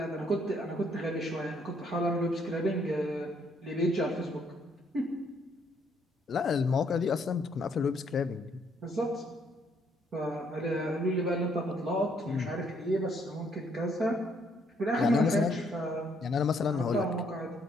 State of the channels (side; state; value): both; normal; correlation 0.69